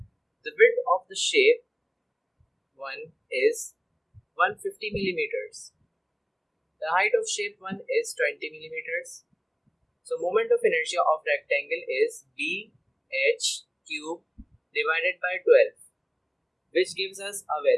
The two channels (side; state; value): both; identical; correlation 1.00